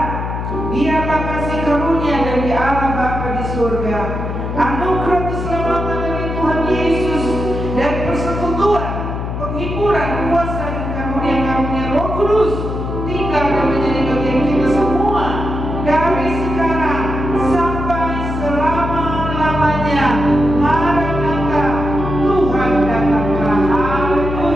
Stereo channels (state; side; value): noise; left; hum, 4 dB below the sound